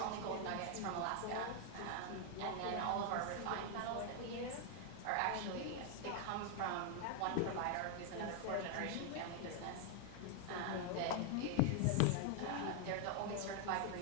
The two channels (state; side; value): different; both; correlation 0.00